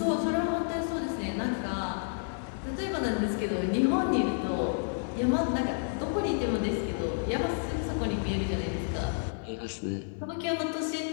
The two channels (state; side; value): silent; right; digital silence